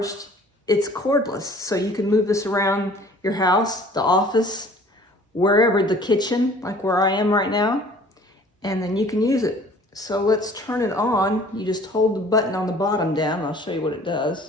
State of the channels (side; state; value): both; normal; correlation 0.51